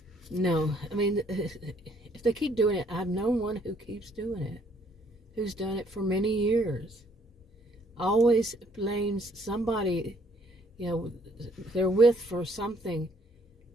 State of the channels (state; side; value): normal; both; correlation 0.64